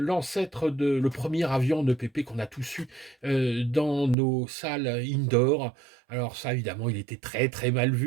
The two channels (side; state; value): left; drops out; at 4.2 s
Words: premier avion en EPP qu'on a tous eu dans nos salles indoor. Alors ça, évidemment, il était très très mal